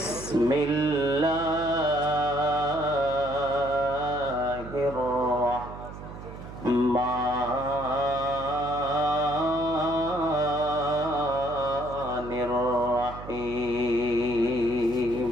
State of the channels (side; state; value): right; noise; hum, 12 dB below the sound